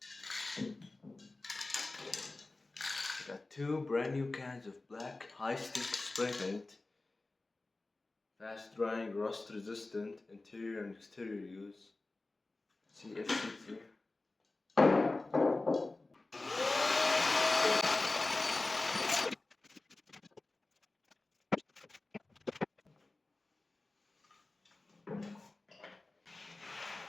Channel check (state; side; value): quieter; right; 3.2 dB